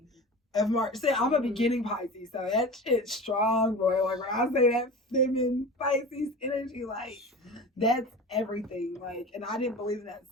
Of March. See, I'm a beginning Pisces, so that shit's strong, boy. Like when I say that feminine Pisces energy, like that's everything. Like, and I didn't believe in that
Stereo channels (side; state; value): both; normal; correlation 0.33